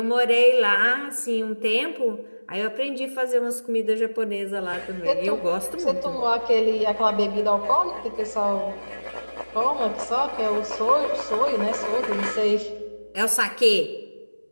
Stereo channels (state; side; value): inverted; both; correlation -1.00